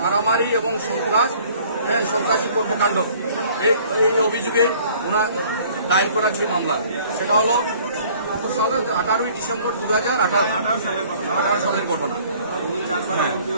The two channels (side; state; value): both; inverted; correlation -0.55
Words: মারামারি এবং সন্ত্রাসী কর্মকাণ্ড এই অভিযোগে ওনার দায়ের করা যে মামলা সেটা হলো 18ই ডিসেম্বর 2018 সালের ঘটনা।